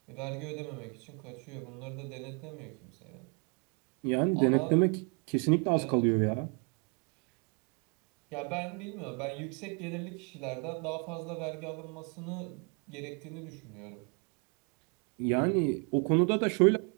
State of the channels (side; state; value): left; quieter; 36.2 dB